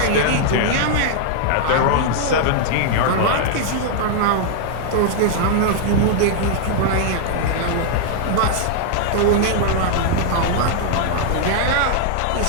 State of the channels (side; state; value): both; different; correlation 0.00